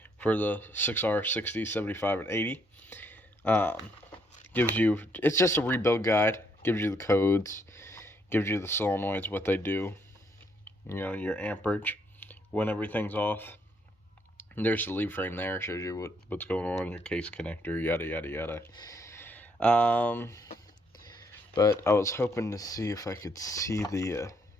for the 6R 60, 75, and 80. It's just a rebuild guide. Gives you the codes, gives you the solenoids, what they do, your amperage, when everything's off. And there's the lead frame there, shows you what's going on, your case connector, yada yada yada. But I was hoping to see if I could see the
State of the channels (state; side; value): normal; both; correlation 0.71